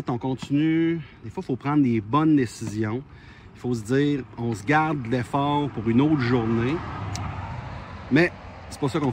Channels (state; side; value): identical; both; correlation 1.00